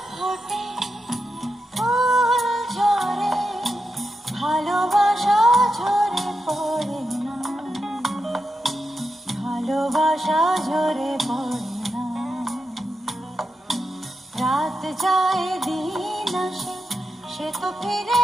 ফোটে ফুল ঝরে ভালোবাসা ঝরে পড়ে না, ভালোবাসা ঝরে পড়ে না। রাত যায় দিন আসে, সে তো ফিরে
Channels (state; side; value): normal; both; correlation 0.87